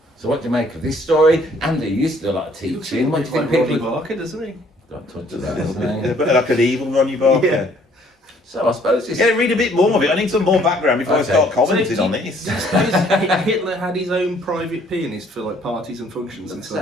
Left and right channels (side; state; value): both; normal; correlation 0.61